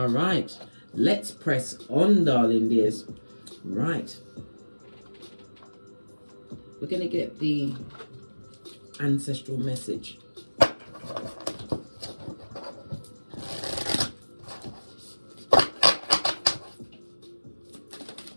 right. Let's press on, darling dears. Right. We're going to get the ancestral message.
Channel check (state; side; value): inverted; both; correlation -1.00